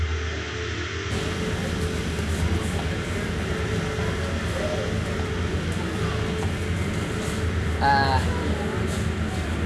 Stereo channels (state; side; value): identical; both; correlation 1.00